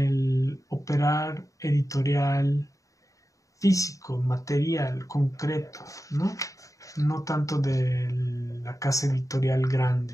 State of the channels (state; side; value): late; right; 0.16 ms